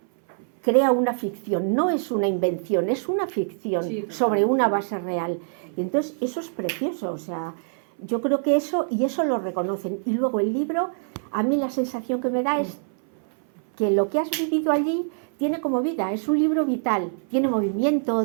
crea una ficción, no es una invención, es una ficción sobre una base real. Y entonces eso es precioso, o sea, yo creo que eso lo reconocen. Y luego el libro, a mí la sensación que me da es que lo que has vivido allí tiene como vida, es un libro vital, tiene movimiento,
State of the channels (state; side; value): silent; left; 57 dB below the other